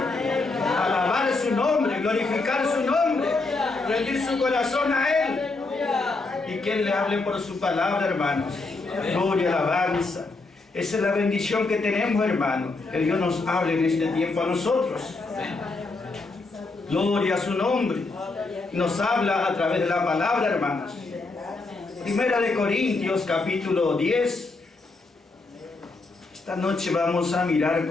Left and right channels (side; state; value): right; quieter; 3.6 dB